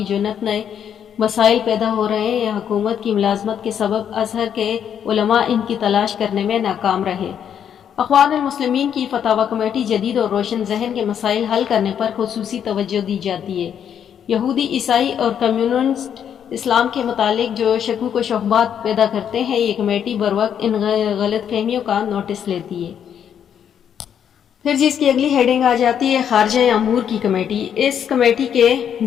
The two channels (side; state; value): right; quieter; 8.7 dB